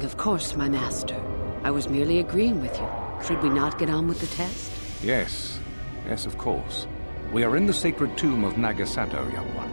of course, my master. I was merely agreeing with you. Should we not get on with the test? Yes. Yes, of course. We are in the sacred tomb of Nagasado, young one.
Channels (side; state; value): both; inverted; correlation -1.00